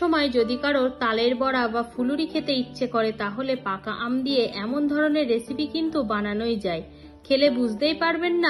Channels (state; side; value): identical; both; correlation 1.00